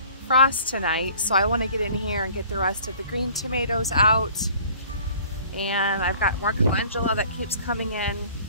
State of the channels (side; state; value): both; inverted; correlation -0.51